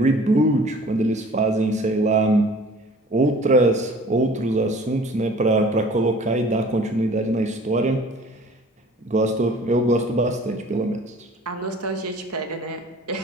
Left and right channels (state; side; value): normal; both; correlation 0.48